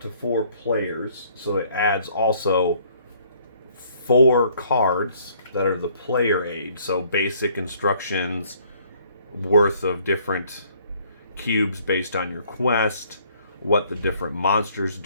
4 players. So it adds also 4 cards that are the player aid. So basic instructions worth of different cubes based on your quest, what the different monsters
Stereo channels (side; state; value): both; inverted; correlation -0.61